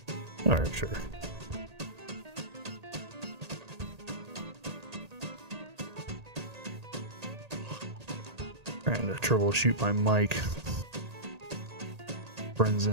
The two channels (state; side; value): late; left; 1.8 ms